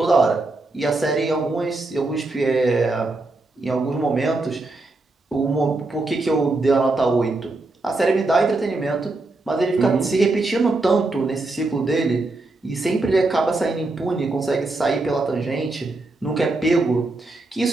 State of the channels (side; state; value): left; quieter; 3.1 dB